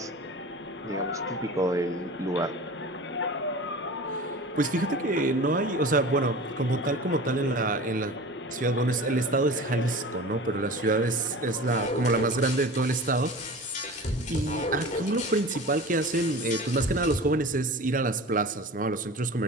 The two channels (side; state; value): both; normal; correlation 0.36